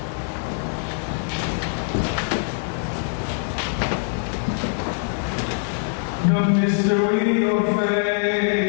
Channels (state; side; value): silent; right; 63 dB below the other